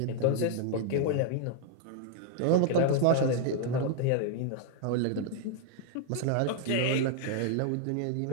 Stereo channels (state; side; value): different; both; correlation 0.00